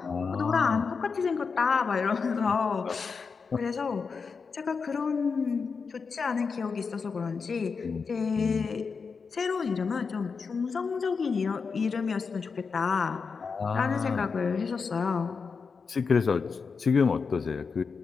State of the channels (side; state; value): right; quieter; 5.2 dB